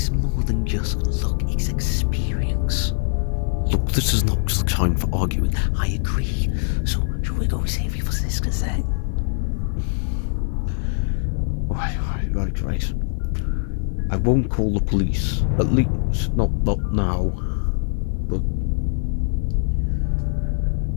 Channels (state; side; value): silent; right; digital silence